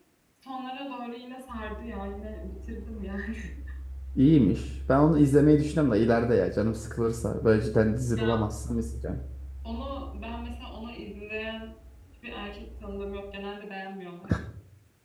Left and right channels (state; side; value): identical; both; correlation 1.00